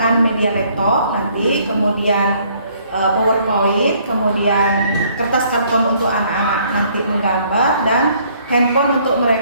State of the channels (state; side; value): inverted; both; correlation -0.63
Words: media laptop nanti, kemudian PowerPoint, kemudian kertas karton untuk anak-anak nanti menggambar, dan handphone untuk